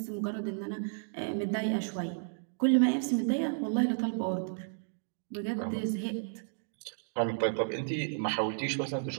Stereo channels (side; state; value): left; silent; digital silence